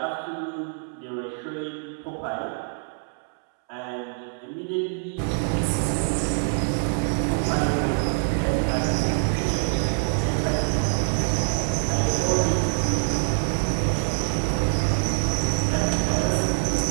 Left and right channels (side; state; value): left; silent; 60 dB below the other